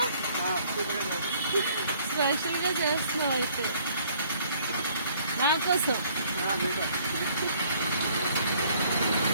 Special ga chestunava aithe. Na kosam.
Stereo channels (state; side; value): inverted; both; correlation -0.60